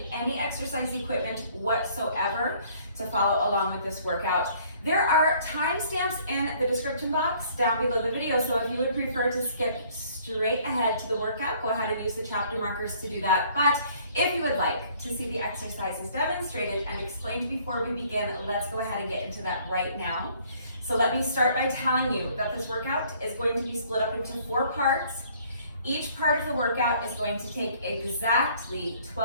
any exercise equipment whatsoever to follow along with this workout. There are timestamps in the description box down below the video, so if you would prefer to skip straight ahead to the workout, go ahead and use the chapter markers to do that. But if you would like to see the exercises demonstrated and explained before we begin, let's go ahead and get into that right now. So let me start by telling you that this workout is going to be split up into 4 parts. Each part of the workout is going to take exactly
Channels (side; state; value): both; inverted; correlation -0.59